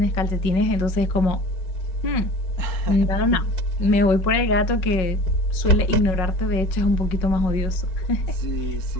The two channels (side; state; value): right; late; 5.4 ms